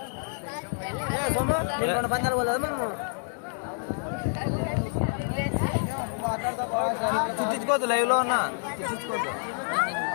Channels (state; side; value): silent; right; digital silence